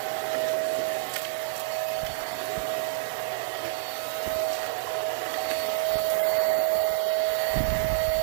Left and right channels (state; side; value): silent; left; 60 dB below the other